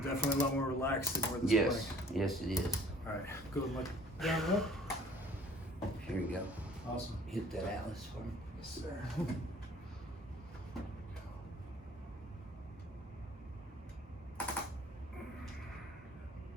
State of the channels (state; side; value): normal; both; correlation 0.53